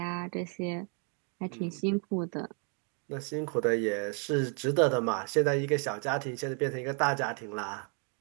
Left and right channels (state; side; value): quieter; left; 39.7 dB